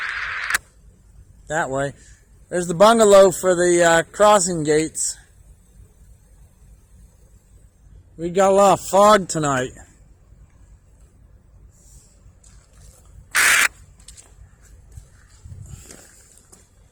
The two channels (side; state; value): both; identical; correlation 1.00